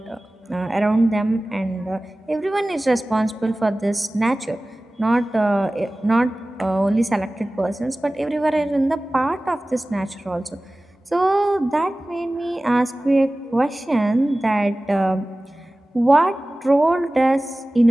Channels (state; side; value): normal; both; correlation 0.97